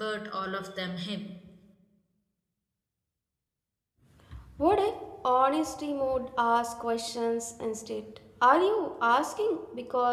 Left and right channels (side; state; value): both; identical; correlation 1.00